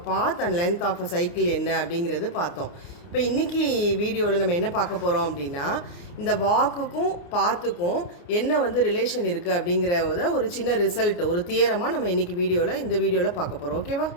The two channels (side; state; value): right; late; 29 ms